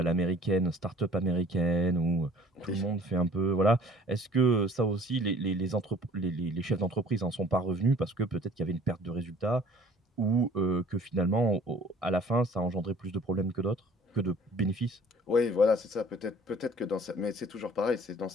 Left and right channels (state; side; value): normal; both; correlation 0.51